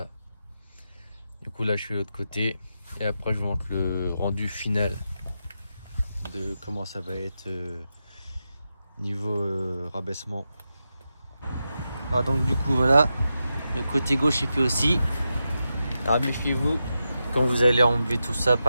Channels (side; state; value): both; inverted; correlation -0.88